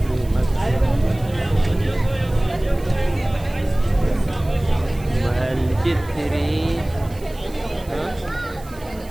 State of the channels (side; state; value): right; noise; hiss, 22 dB below the sound